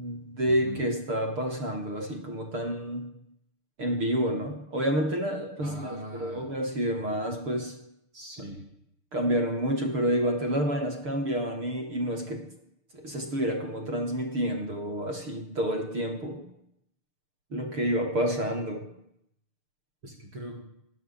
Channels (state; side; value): late; left; 6.7 ms